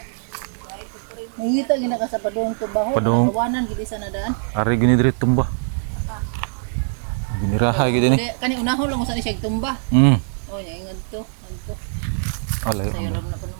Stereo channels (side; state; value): left; silent; digital silence